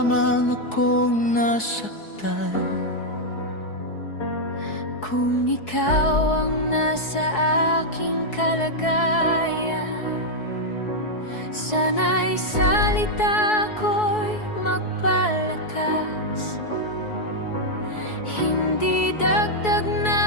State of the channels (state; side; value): late; right; 4.7 ms